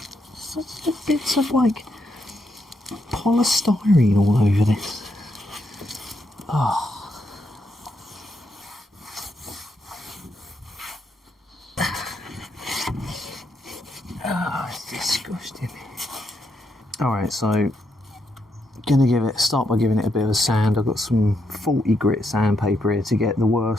Such bits of like polystyrene all over this. Oh. Oh, it's disgusting. Alright, so start by giving it a bit of a sand. I've got some 40 grit sandpaper here to get the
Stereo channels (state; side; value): normal; both; correlation 0.79